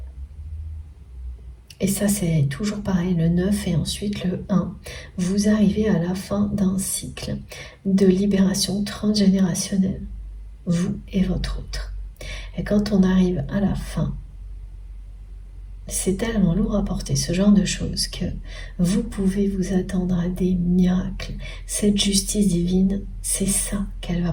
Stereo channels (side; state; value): both; identical; correlation 1.00